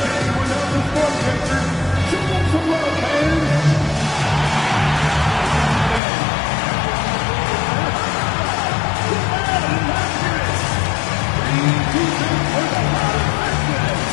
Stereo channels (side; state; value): right; drops out; at 6.0 s